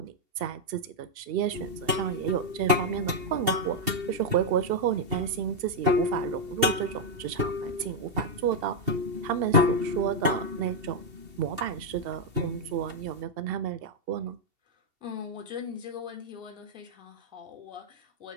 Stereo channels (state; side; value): late; left; 2.7 ms